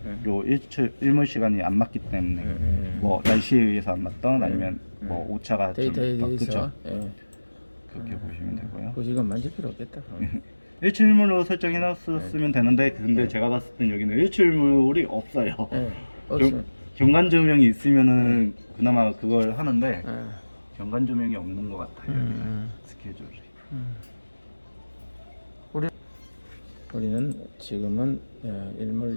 요 일몰 시간이 안 맞기 때문에 뭐 날씨에 의해서 안 맞던 아니면 뭐 오차가 데이터에 좀 대해서 그렇게 보시면 되고요. 그 이건 만질 필요 없겠다. 일출물로 설정해놨으면 되는데 근데 제가 봤을 땐 여기는 일출물이 없어요. 경관 조명이 있으면은 그나마 그걸 하는데 예. 경관 조명이 없는 것 같아요. 음. 스케줄이. 우리는 지금은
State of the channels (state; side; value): inverted; both; correlation -1.00